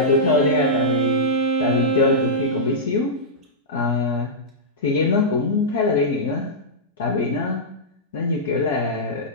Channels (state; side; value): normal; both; correlation -0.12